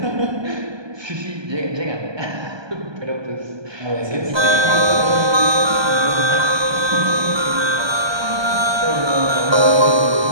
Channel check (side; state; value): left; late; 1.2 ms